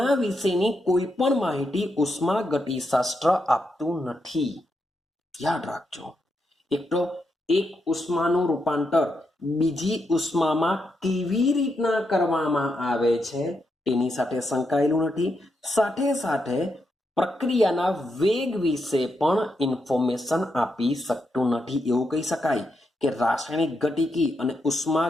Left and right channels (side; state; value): both; normal; correlation 0.83